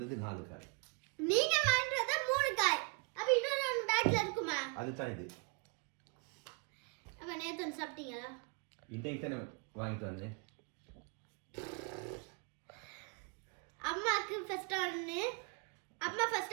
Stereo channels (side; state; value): left; quieter; 32.3 dB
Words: 4 காய். நீங்க வாங்கிட்டு வந்தா 3 காய். அப்ப இன்னொரு ஒன்னு பேக்ல இருக்குமா? அதுதான் இது. அப்ப நேத்து வந்து சாப்பிட்டீங்களா? இன்னைக்கு தானே வாங்கிட்டு வந்தேன். அம்மாக்கு ஃபர்ஸ்ட் ஒன்னு அம்மா